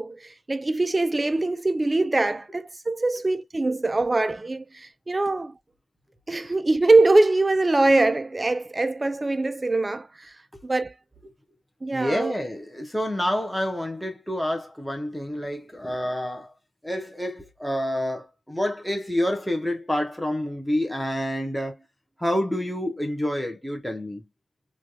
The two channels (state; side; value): normal; both; correlation 0.97